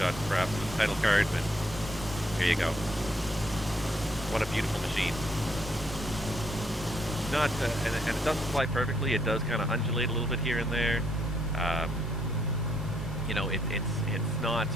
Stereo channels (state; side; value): normal; both; correlation 0.71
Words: title card, but here you go. What a beautiful machine. Not, and it doesn't fly perfectly. It does kind of undulate a little bit here and there. You know, it's not